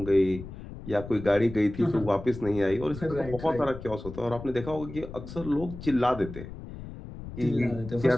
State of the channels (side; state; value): left; noise; rumble, 12 dB below the sound